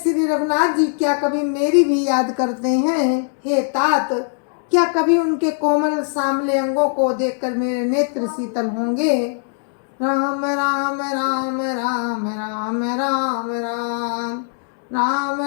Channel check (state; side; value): silent; right; digital silence